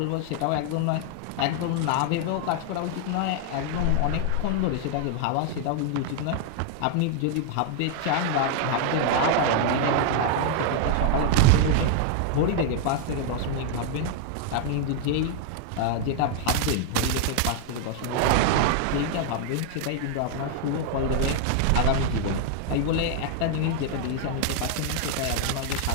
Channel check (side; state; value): both; different; correlation 0.00